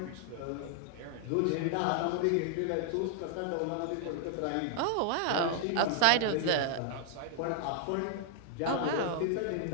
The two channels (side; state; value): both; different; correlation -0.01